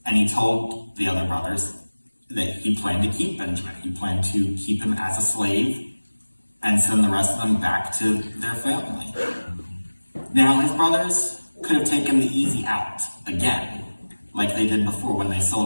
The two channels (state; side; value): inverted; both; correlation -1.00